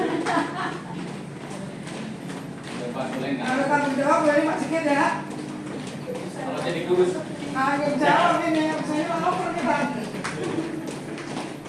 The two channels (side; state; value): both; identical; correlation 1.00